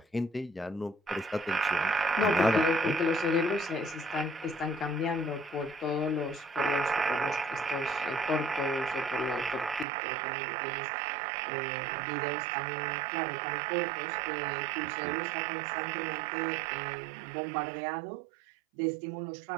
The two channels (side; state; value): left; drops out; at 9.9 s